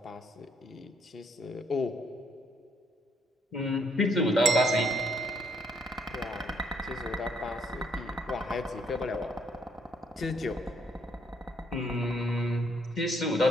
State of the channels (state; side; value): normal; both; correlation 0.71